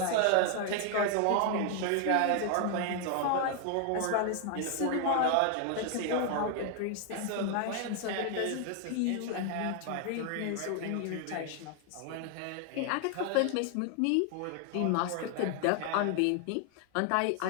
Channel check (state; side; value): different; both; correlation 0.00